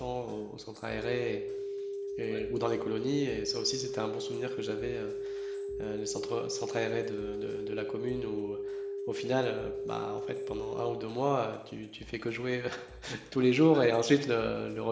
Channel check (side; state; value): both; identical; correlation 1.00